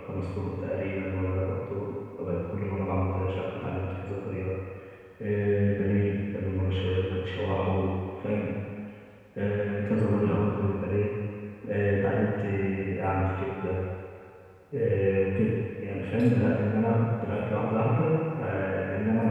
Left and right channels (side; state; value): both; identical; correlation 1.00